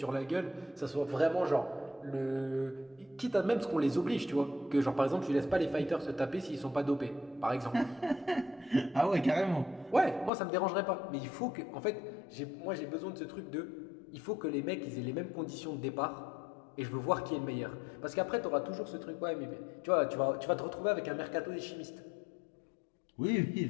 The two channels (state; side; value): drops out; right; at 10.3 s